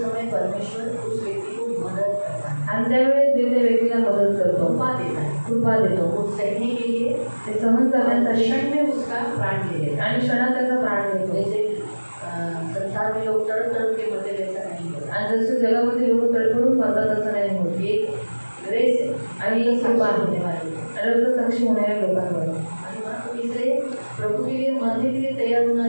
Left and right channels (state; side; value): inverted; both; correlation -1.00